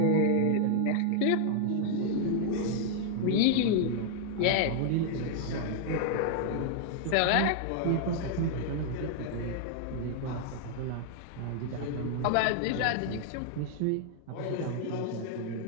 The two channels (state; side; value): different; both; correlation 0.00